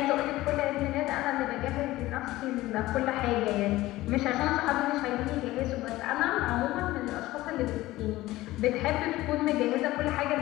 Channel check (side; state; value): right; quieter; 17.3 dB